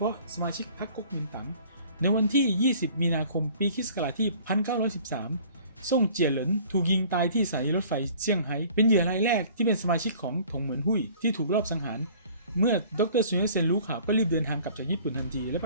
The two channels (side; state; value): both; inverted; correlation -0.51